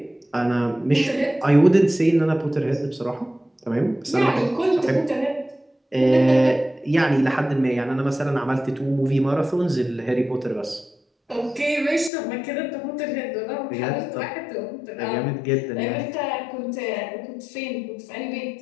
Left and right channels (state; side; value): drops out; right; at 12.1 s